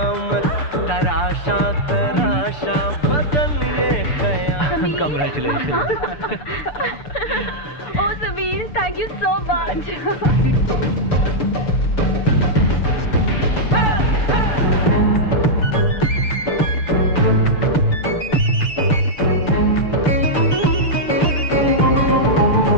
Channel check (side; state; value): right; late; 6.9 ms